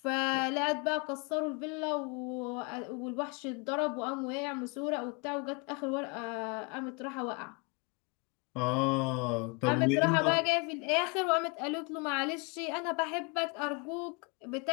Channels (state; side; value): quieter; right; 32.2 dB